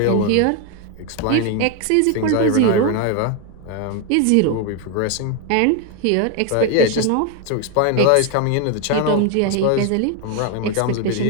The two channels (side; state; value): both; different; correlation 0.01